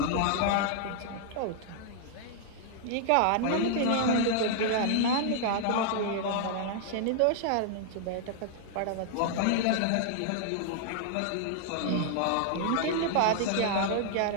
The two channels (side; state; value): both; different; correlation -0.01